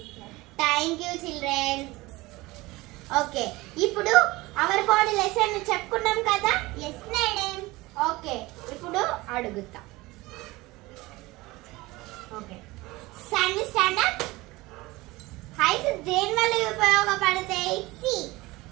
Thank you children. Okay, ఇప్పుడు our body lesson చెప్పుకున్నాం కదా? Yes madam. Okay, ఇప్పుడు అడుగుతా. Okay. Sandy stand up. Heights దేని వల్ల ఉపయోగపడతాయి?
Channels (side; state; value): left; quieter; 20.8 dB